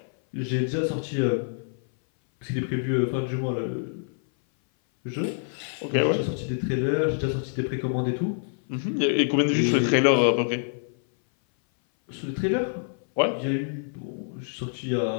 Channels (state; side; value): silent; right; 58 dB below the other